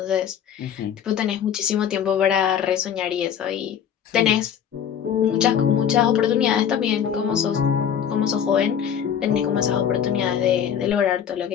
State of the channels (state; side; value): quieter; right; 8.7 dB